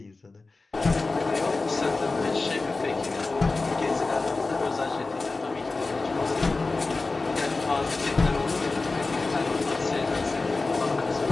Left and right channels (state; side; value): quieter; right; 3.6 dB